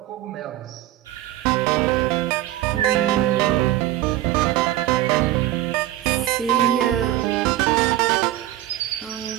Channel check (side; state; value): left; quieter; 14.3 dB